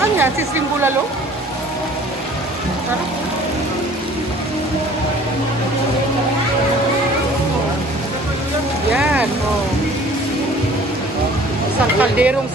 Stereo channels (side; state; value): both; normal; correlation 0.51